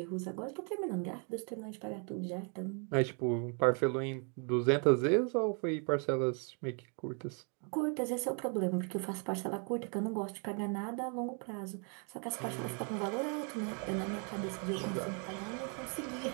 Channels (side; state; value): left; quieter; 38.4 dB